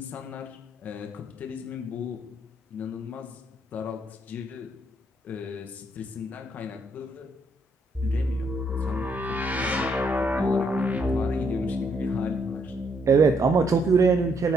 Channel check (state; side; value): normal; both; correlation 0.73